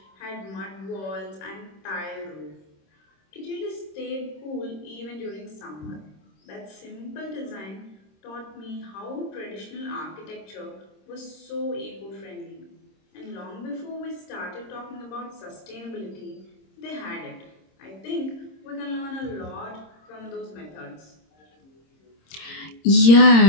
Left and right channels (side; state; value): right; late; 26 ms